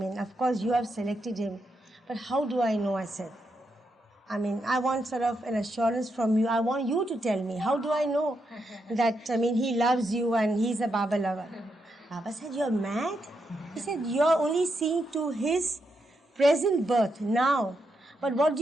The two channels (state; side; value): normal; both; correlation 0.82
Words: course, you have selected him. But how do I know, I said. I want sort of an assurance from you. I want you to tell me. How do I know that, he loves you and he's a Baba lover? Baba said, you're mad? He said, you're only seeing to his present birth now. But what do